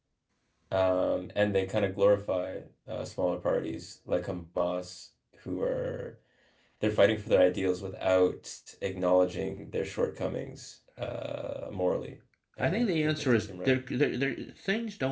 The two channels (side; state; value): both; identical; correlation 1.00